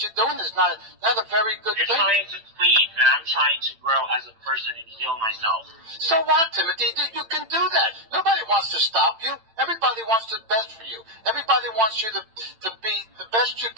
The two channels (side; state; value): left; late; 8.9 ms